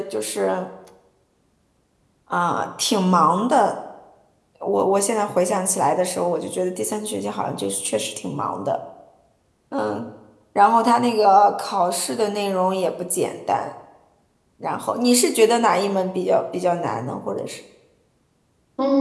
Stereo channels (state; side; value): identical; both; correlation 1.00